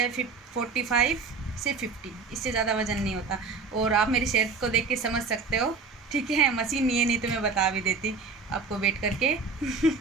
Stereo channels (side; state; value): left; quieter; 4.6 dB